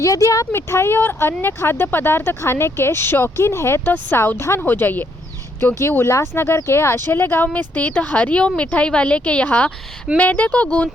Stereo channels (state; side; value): normal; both; correlation 0.72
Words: यदि आप मिठाई और अन्य खाद्य पदार्थ खाने के शौकीन हैं तो सावधान हो जाइए, क्योंकि उल्लासनगर के आशेले गांव में स्थित हरिओम मिठाई वाले के यहाँ मैदे को